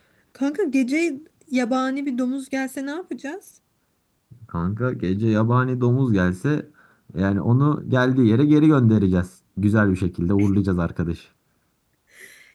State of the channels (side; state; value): both; identical; correlation 1.00